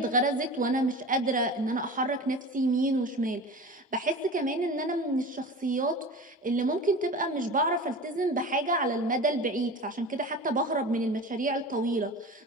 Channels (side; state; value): both; normal; correlation 0.33